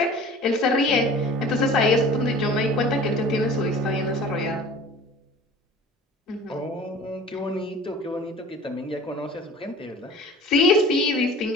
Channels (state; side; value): normal; both; correlation 0.43